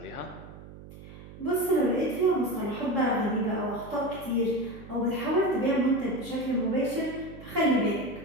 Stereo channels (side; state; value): right; noise; hum, 16 dB below the sound